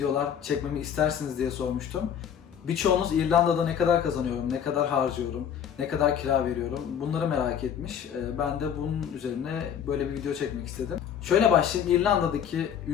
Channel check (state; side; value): quieter; right; 8.6 dB